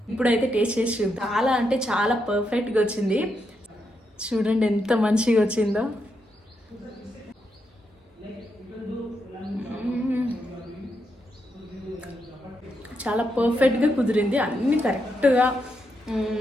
ఇప్పుడైతే టేస్ట్ చేసి చూద్దాం. చాలా అంటే చాలా పర్ఫెక్ట్గా వచ్చింది. చూడండి ఎంత మంచిగా వచ్చిందో. చాలా పర్ఫెక్ట్గా కుదిరింది. అన్నీ కరెక్ట్గా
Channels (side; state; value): both; normal; correlation 0.82